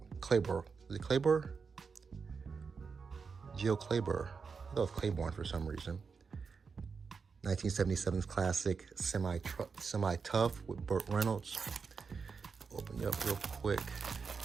Is it Claiborne? Geo Claiborne. I thought it was Claiborne for some reason. 1977's classic Semi-Tough with Burt Reynolds. Open it up real quick.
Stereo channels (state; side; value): quieter; left; 5.3 dB